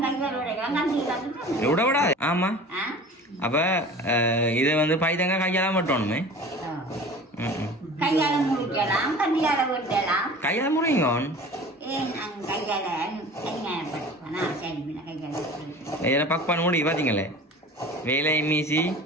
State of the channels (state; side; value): normal; both; correlation 0.40